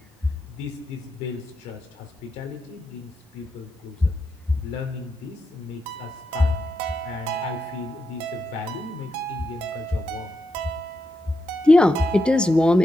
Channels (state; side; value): normal; both; correlation 0.84